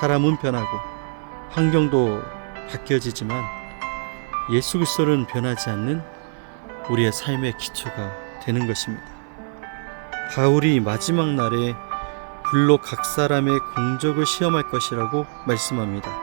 변하고 환경도 바뀌어지지만 예수 그리스도는 변하지 않는 우리의 삶의 기초가 되는 것입니다. 바울이 마지막 날에 불로 각 사람의 공적을 시험할 것이라고 말씀합니다.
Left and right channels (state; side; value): silent; left; 55 dB below the other